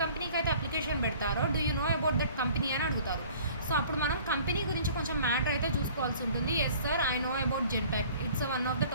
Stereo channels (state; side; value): inverted; both; correlation -0.50